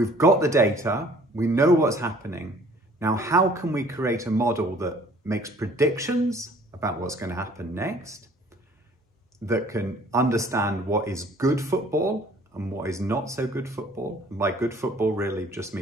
got the data, we know what's happening. Now, how can we create a model that makes predictions about what's going to happen next, that can understand what is good football and what is not so good football? And by good football really just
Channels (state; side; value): normal; both; correlation 0.55